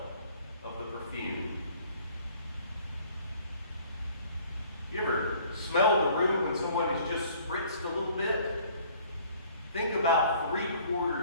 of the perfume. You ever smell the room when someone has just spritzed a little bit? Think about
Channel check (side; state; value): both; inverted; correlation -0.56